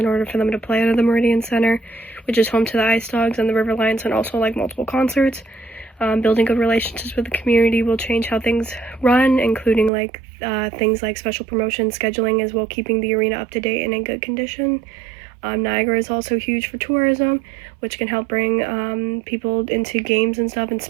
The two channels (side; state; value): left; drops out; at 9.9 s